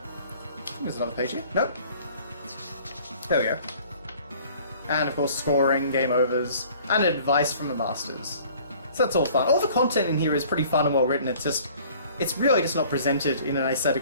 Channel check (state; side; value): inverted; both; correlation -0.52